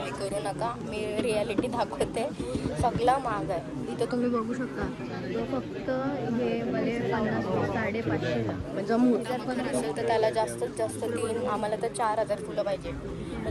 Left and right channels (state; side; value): identical; both; correlation 1.00